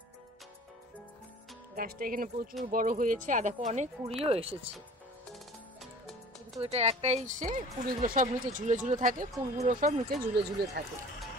গাছটা এখানে প্রচুর বড় হয়েছে, আর দেখো অনেক কুড়িও এসেছে। কিন্তু এটা একটাই কুড়িগুলো সব নিচে ঝুলে ঝুলে থাকে, ফুলগুলো সব নিচে ঝুলে ঝুলে থাকে।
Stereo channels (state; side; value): normal; both; correlation 0.45